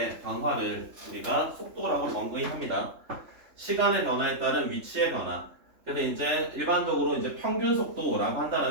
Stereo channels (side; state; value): left; late; 3.3 ms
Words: 변화를 우리가 속도라고 정의합니다. 시간의 변화에 따른 위치의 변화. 그래서 이제 일반적으로 이제 평균 속도라고